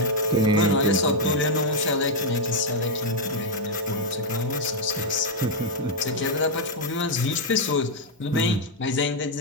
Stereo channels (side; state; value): both; normal; correlation -0.01